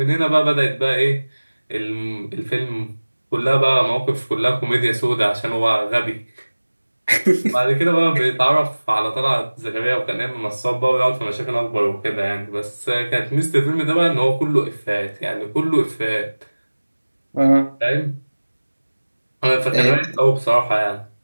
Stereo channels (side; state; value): both; inverted; correlation -1.00